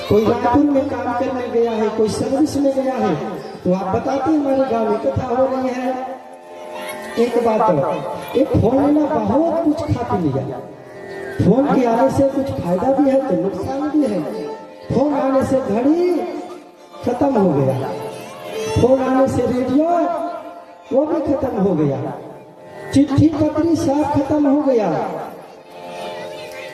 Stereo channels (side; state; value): both; identical; correlation 1.00